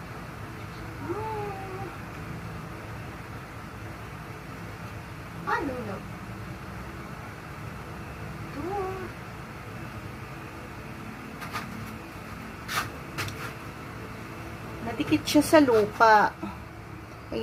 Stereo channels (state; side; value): identical; both; correlation 1.00